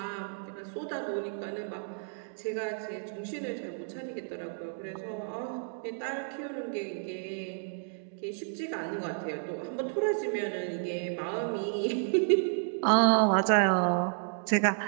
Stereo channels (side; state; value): left; silent; digital silence